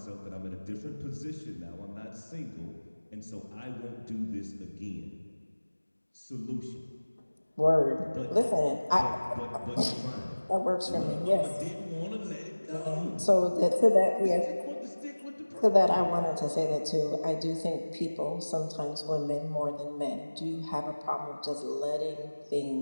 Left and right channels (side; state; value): both; inverted; correlation -1.00